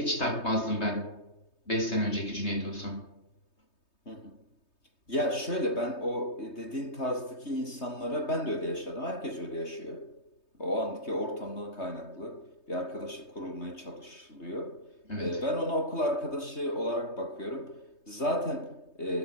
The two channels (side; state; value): right; late; 3.2 ms